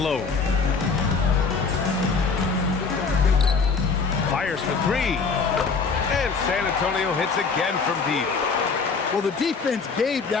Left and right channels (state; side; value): quieter; right; 5.0 dB